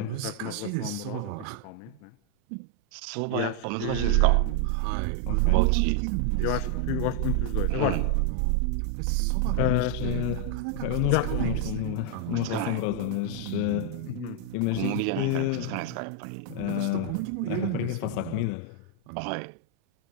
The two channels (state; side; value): different; both; correlation 0.00